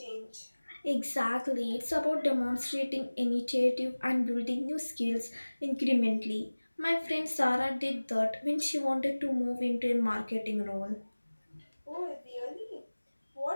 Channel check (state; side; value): inverted; both; correlation -1.00